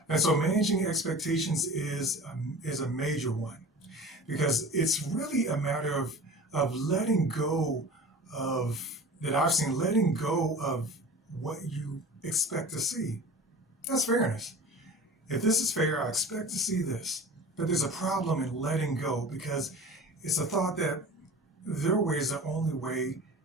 And so managing expectations is a major one because it's really a matter of letting go of, that I've seen, letting go of what you expect to see. That's fairness. If this is fair, I expect to see this. But there's a problem in letting go because it's a thought that their way is the only way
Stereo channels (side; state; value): both; normal; correlation 0.37